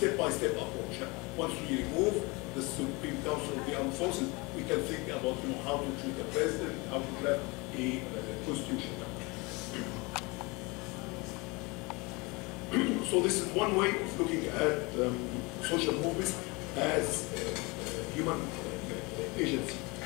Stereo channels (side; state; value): right; quieter; 26.3 dB